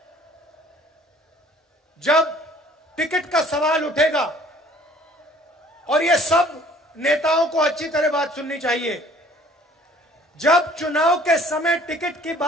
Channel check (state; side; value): normal; both; correlation 0.54